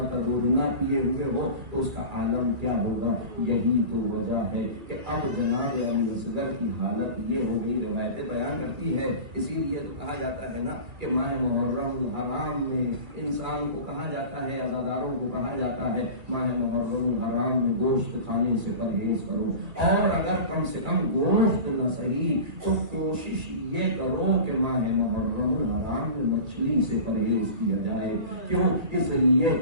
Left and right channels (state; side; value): late; left; 2.3 ms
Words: کا دودھ نہ پیے ہوئے ہو تو اس کا عالم کیا ہوگا؟ یہی تو وجہ ہے کہ اب جناب علی اصغر کی حالت یہ ہو گئی۔ روایتیں بیان کرتی ہے، اسی لیے تو کہا جاتا ہے نا کہ ماہ محرم الحرام میں انسان کو کہا جاتا ہے، عزاداروں کو کہا جاتا ہے ماہ محرم الحرام میں گوشت کھانے سے پرہیز کرو، اور اگر کم سے کم گوشت نہ صحیح تو کوشش یہ کرو کہ ماہ محرم الحرام میں مچھلی سے پرہیز کیا جائے۔ کیوں؟ اس لیے